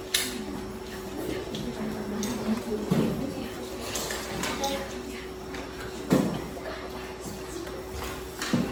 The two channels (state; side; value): identical; both; correlation 1.00